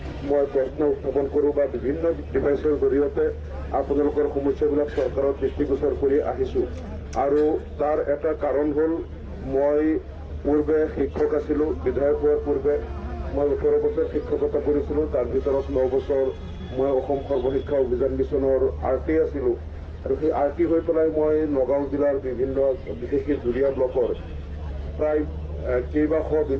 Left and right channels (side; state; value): both; identical; correlation 1.00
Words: মই প্ৰশ্ন উত্থাপন কৰোঁ বা বিভিন্ন ডিভাইচৰ জৰিয়তে আপোনালোকৰ সমস্যাবিলাক চৰকাৰৰ দৃষ্টিগোচৰ কৰি আহিছোঁ। আৰু তাৰ এটা কাৰণ হ'ল মই পূৰ্বে শিক্ষক আছিলোঁ, বিধায়ক হোৱাৰ পূৰ্বে মই 18 বছৰ শিক্ষকতা কৰিছিলোঁ, তাৰ ভিতৰত 9 বছৰ মই অসম সৰ্বশিক্ষা অভিযান মিছনৰ RT আছিলোঁ। আৰু সেই RT হৈ পেলাই মই নগাঁও জিলাৰ বিভিন্ন বিশেষকৈ জুৰীয়া ব্লকৰ প্ৰায় কেইবাশ